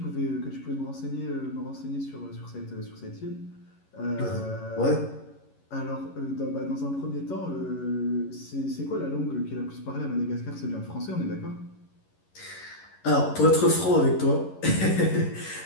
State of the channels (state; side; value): late; right; 11 ms